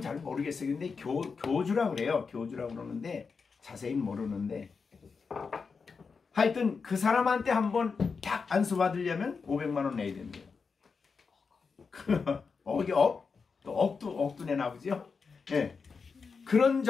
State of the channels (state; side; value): quieter; right; 5.1 dB